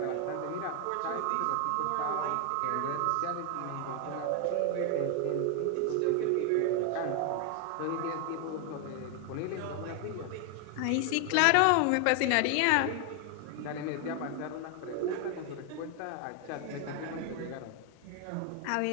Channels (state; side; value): different; both; correlation 0.00